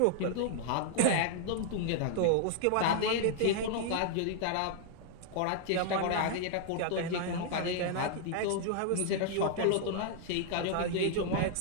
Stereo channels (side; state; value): both; different; correlation 0.00